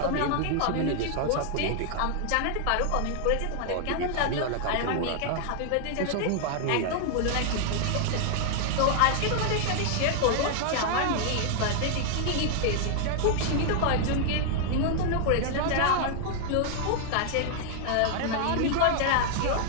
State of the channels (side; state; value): both; different; correlation 0.00